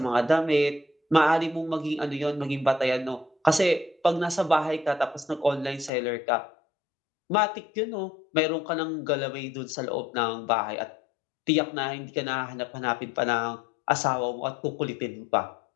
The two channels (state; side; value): drops out; right; at 5.9 s